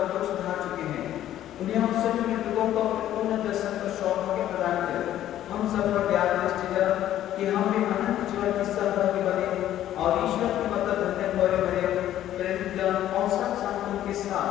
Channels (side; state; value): right; quieter; 12.3 dB